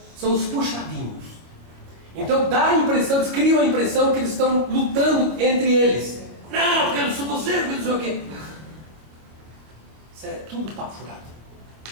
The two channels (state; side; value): late; left; 26 ms